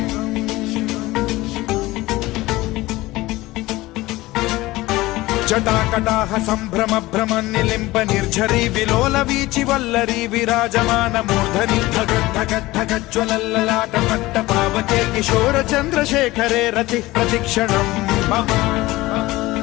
జటాకటాహ సంభ్రమ భ్రమ నిలింప నిర్ఝరీ విలోల వీచి వల్లరీ విరాజమాన మూర్ధని ధగద్ధగద్ధగజ్వలల్లలాట పట్ట పావకే కిశోర చంద్రశేఖరే రతి ప్రతిక్షణం మమ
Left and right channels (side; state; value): right; quieter; 18.9 dB